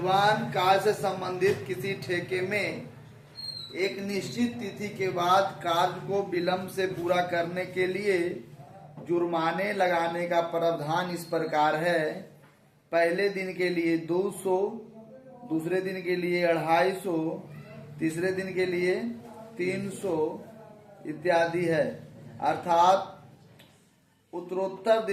कार्य से संबंधित किसी ठेके में एक निश्चित तिथि के बाद कार्य को विलंब से पूरा करने के लिए जुर्माने लगाने का प्रावधान इस प्रकार है। पहले दिन के लिए 200, दूसरे दिन के लिए 250, तीसरे दिन के लिए 300 इत्यादि है। अर्थात उत्तरोत्तर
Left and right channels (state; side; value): identical; both; correlation 1.00